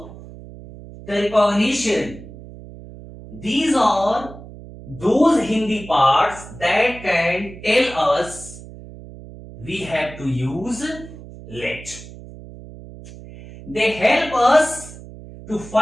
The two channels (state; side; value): noise; right; hum, 16 dB below the sound